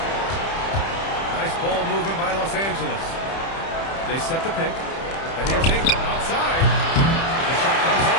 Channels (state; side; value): late; right; 30 ms